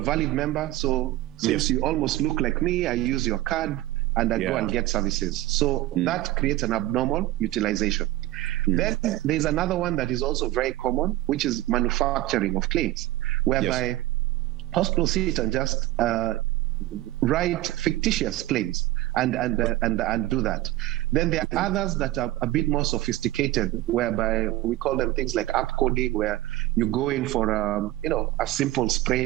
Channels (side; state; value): left; quieter; 16.6 dB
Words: valid member, so since you almost look like me, I use your card and I go and get services. So that creates an abnormal utilization. Then there's another one that is also very common, which is manufacturing of claims, whereby hospitals sit and just write fictitious claims and do that. Then there are others that are a bit more sophisticated, whereby we call them things like app coding, where you go in for a simple